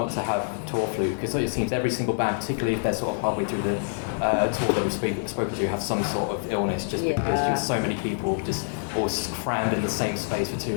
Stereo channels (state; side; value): silent; right; 61 dB below the other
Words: to have tour flu, because it seems every single band, particularly if they're sort of halfway through the tour that we've spoken to, have some sort of illness just because just so many people just all crammed in the same space for too